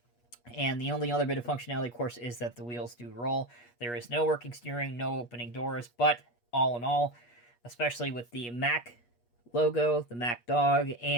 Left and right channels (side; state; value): right; late; 8.4 ms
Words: And the only other bit of functionality, of course, is that the wheels do roll. There is no working steering, no opening doors, but all in all, especially with the Mack logo, the Mack dog,